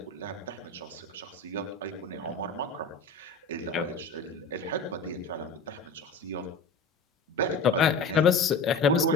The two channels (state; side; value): quieter; right; 3.7 dB